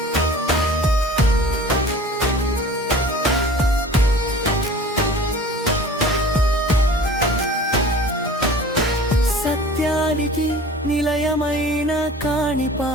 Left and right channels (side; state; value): both; normal; correlation 0.43